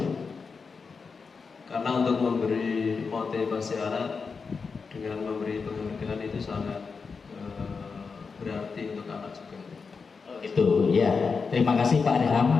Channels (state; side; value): quieter; right; 5.1 dB